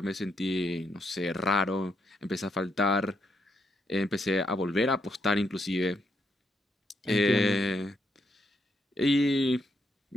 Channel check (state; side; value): normal; both; correlation 0.78